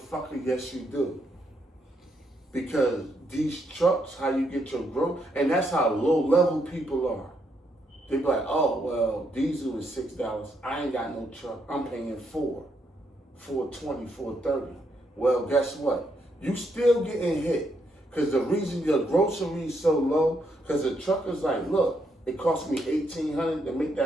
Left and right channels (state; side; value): normal; both; correlation 0.77